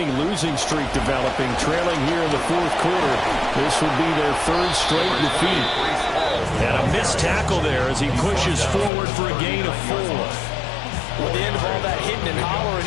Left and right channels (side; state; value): right; drops out; at 8.9 s